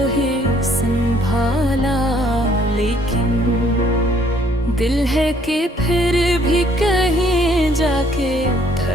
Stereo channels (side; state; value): both; normal; correlation 0.63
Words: ही संभाला, लेकिन दिल है कि फिर भी कहीं जाके